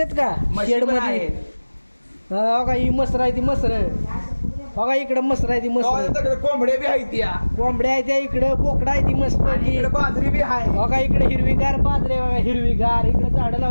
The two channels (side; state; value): both; inverted; correlation -1.00